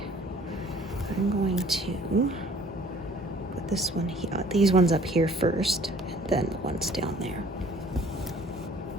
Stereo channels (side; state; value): both; normal; correlation 0.54